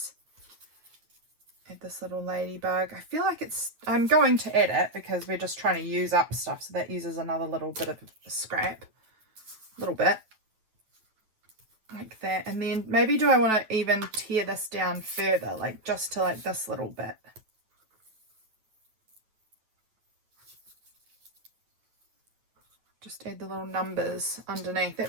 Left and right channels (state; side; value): late; left; 9.2 ms